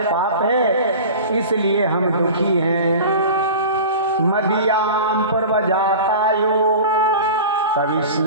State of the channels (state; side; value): inverted; both; correlation -0.34